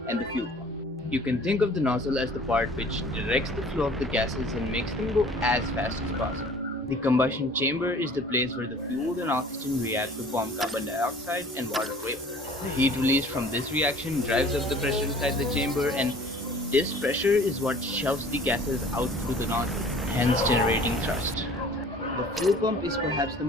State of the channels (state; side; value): normal; both; correlation 0.49